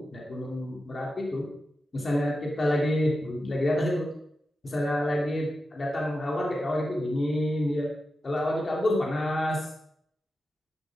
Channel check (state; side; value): normal; both; correlation 0.91